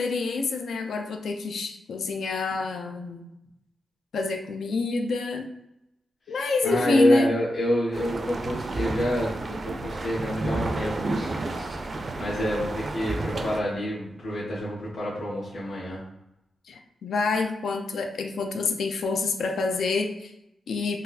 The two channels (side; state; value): both; normal; correlation 0.86